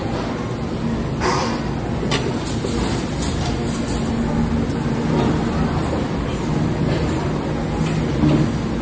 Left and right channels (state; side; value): identical; both; correlation 1.00